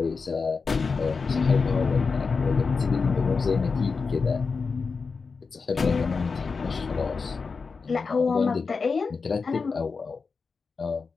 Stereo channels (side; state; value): right; quieter; 4.8 dB